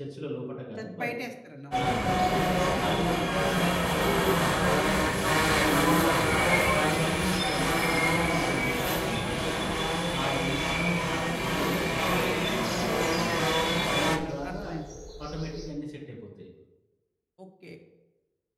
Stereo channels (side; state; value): both; identical; correlation 1.00